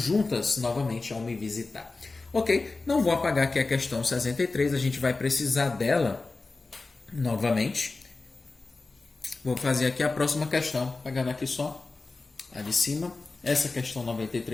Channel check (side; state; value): right; quieter; 3.6 dB